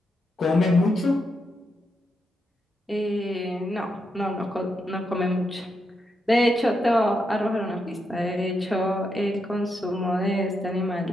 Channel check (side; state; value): both; normal; correlation 0.83